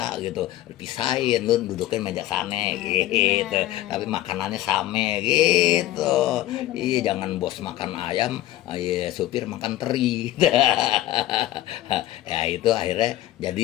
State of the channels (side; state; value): right; quieter; 14.8 dB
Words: gitu, pisahin, lu dudukin meja sana gitu. Tapi makanannya sama gitu. Iya, jangan bos makan ayam, supir makan teri. Ya itu akhirnya